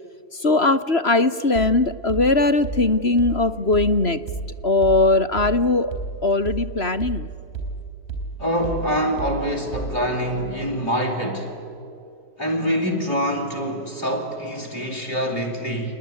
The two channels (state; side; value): late; right; 3.0 ms